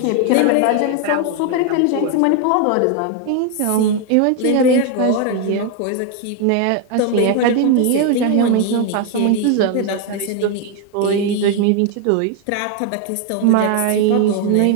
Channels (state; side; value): different; both; correlation 0.01